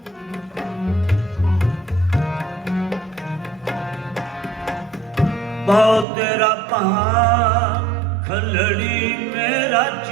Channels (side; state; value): left; drops out; at 6.1 s